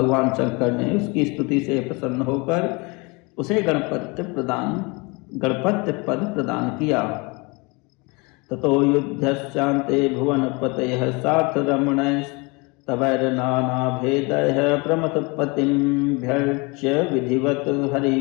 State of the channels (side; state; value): right; quieter; 27.9 dB